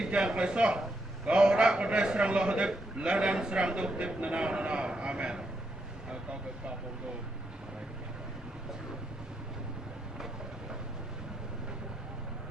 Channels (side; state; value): both; normal; correlation 0.80